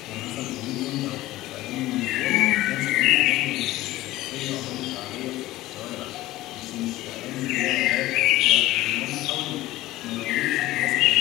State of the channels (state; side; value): quieter; right; 16.9 dB